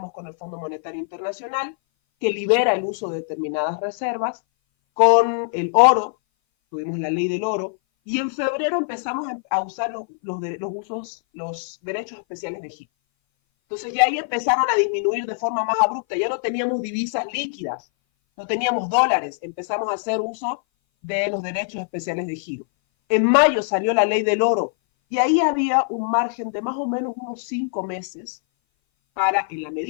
con el Fondo Monetario Internacional, que libera el uso de determinadas reservas, con el oro, tuvimos la ley del oro, y en febrero empezamos a usar los derechos especiales de giro. Entonces ya ahí empezaron a disminuir de forma más abrupta, ya no teníamos divisas líquidas, no teníamos dólares, empezamos a hacer uso de los derechos especiales de giro. En mayo salió la ley del oro y ahí había un margen de más o menos unos 5 meses para, en la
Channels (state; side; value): silent; right; 58 dB below the other